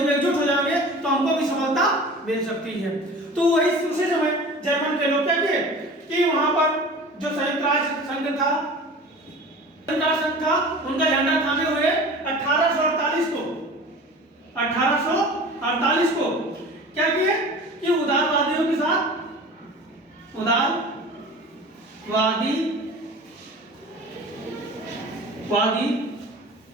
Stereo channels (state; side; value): normal; both; correlation 0.39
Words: एकजुट हो जाएंगे तो हमको भी सफलता मिल सकती है। तो वही उसी समय जर्मन के लोग क्या किए कि वहां पर जो संयुक्त राष्ट्र संघ था, उनका झंडा थामे हुए 1848 को क्या किए कि उदारवादियों के साथ, वादी